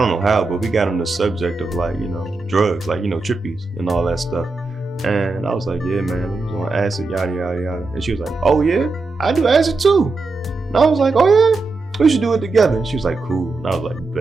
know how, but we got on the subject of drugs, trippies and all that stuff. And I was like, yeah, man, I was on acid, yada, yada, yada. And she was like, oh yeah, I do acid too. And I was like, oh yeah, we should do it together. And she was like, cool. And I was like,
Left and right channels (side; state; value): left; quieter; 3.7 dB